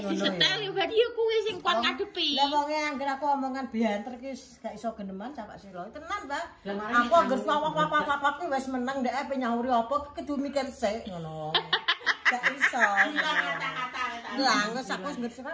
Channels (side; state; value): both; identical; correlation 1.00